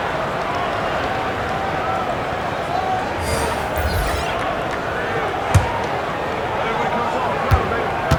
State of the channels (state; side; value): identical; both; correlation 1.00